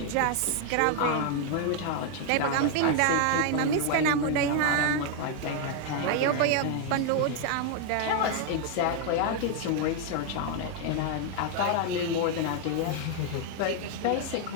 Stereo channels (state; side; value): different; both; correlation 0.00